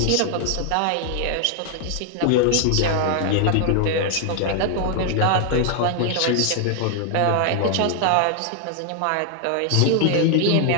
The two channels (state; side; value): different; both; correlation 0.00